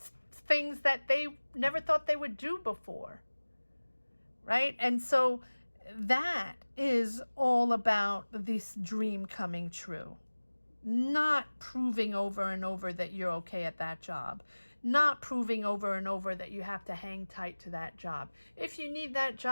things that they never thought they would do before, right? And so that is all about this dream coming true, not proving over and over that you're okay at that job, not proving over and over that you have to hang tight to that job. If you need that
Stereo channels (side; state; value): both; inverted; correlation -1.00